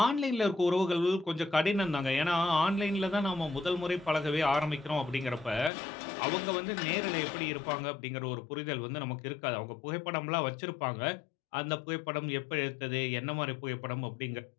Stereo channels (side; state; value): right; drops out; at 5.7 s